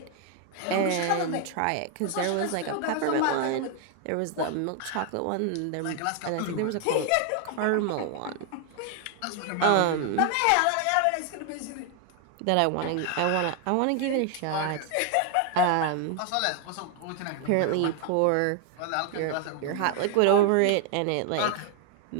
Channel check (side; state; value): both; different; correlation 0.01